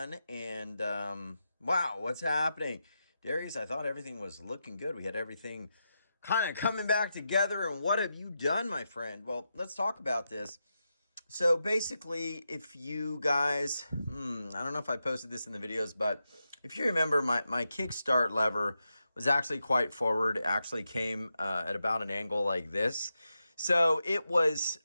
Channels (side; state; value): both; inverted; correlation -0.87